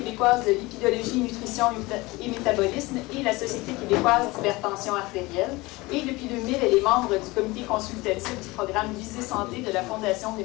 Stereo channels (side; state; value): right; quieter; 22.1 dB